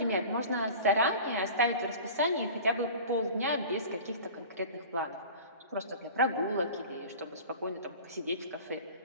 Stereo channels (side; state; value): both; inverted; correlation -0.38